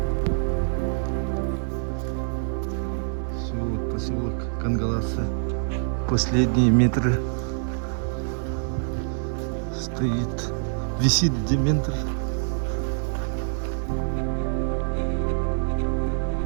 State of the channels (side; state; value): left; silent; digital silence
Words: Все, вот поселок Кангаласы. последние метры. Стоит, висит дементор.